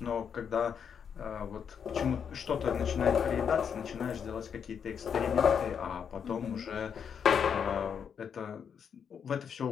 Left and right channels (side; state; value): right; quieter; 7.3 dB